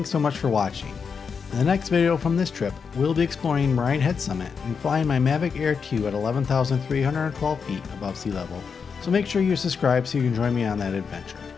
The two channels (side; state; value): right; quieter; 5.9 dB